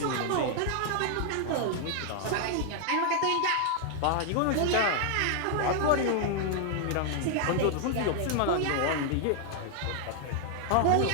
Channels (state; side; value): different; both; correlation 0.00